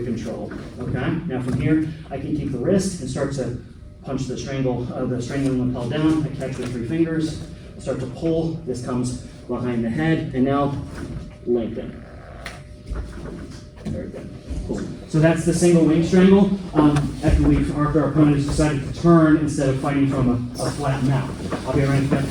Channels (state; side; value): identical; both; correlation 1.00